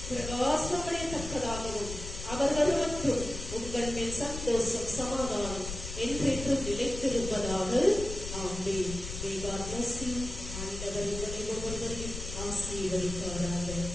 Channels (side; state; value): left; noise; rumble, 8 dB below the sound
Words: பிரகாசமடையத்தக்கதாகவும் அவர் வருவற்றும் உங்கள் மேல் சந்தோஷம் சமாதானம் என்றென்றும் நிலைத்திருப்பதாக. ஆமென். God bless you. ஆண்டவர் உங்களை ஒவ்வொருவரையும் ஆசீர்வதிப்பாராக.